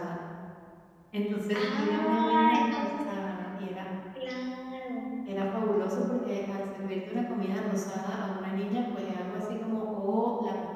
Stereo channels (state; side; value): identical; both; correlation 1.00